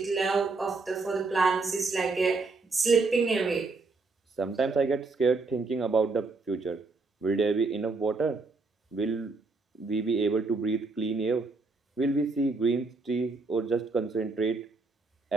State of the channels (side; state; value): left; quieter; 3.7 dB